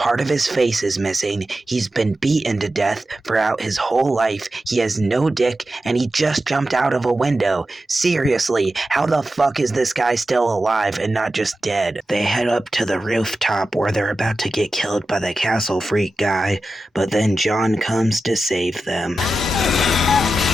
of his face is missing, he's been beaten to death throughout his whole life, he has no dick, and he just jumped out of a window. Seriously, how the fuck is this guy still alive and not just dead? They head up to the rooftop where they're about to get killed by the castle freak guy, but then John comes to save them.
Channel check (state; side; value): normal; both; correlation 0.92